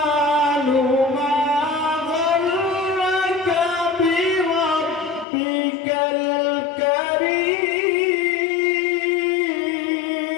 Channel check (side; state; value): right; drops out; at 5.2 s